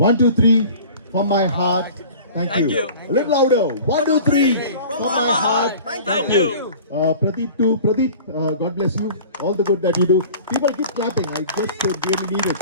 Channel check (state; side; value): inverted; both; correlation -0.43